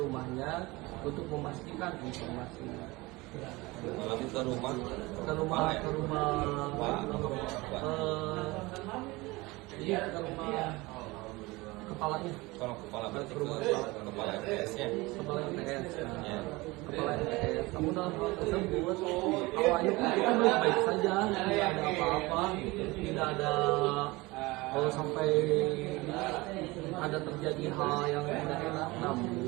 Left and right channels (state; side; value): quieter; left; 22.3 dB